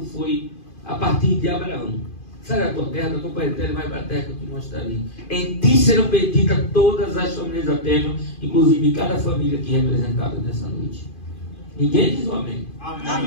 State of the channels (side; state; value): right; late; 2.5 ms